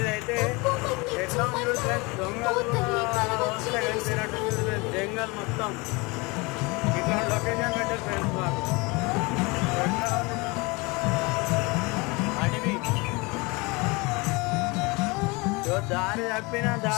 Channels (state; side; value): quieter; right; 26.3 dB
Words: ఎట్లా ఉంది ఫ్రెండ్స్, దొంగలు వస్తే కలిసినట్టు జంగల్ మొత్తం ఇట్లా లొకేషన్ పెట్టారు ఫ్రెండ్స్. మాకు అడవి దారి తప్పినా